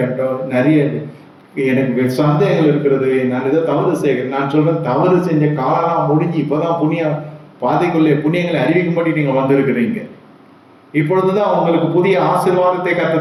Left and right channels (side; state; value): both; identical; correlation 1.00